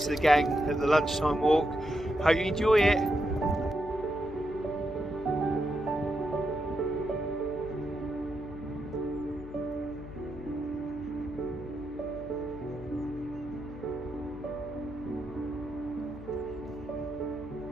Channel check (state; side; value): noise; left; hum, 15 dB below the sound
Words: of the gang at the lunchtime walk. Hope you enjoy it.